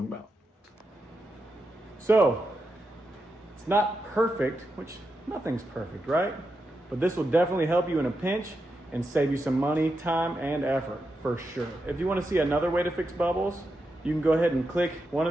about. So, it's not perfect, which nothing's perfect, right? But this will definitely help you in a pinch and save you some money, time, and effort, for sure. If you want to see another way to fix bubbles, you can go ahead and click one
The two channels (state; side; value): normal; both; correlation 0.87